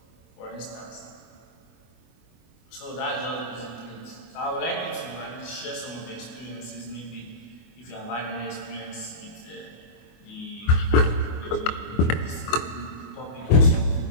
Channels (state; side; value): late; right; 24 ms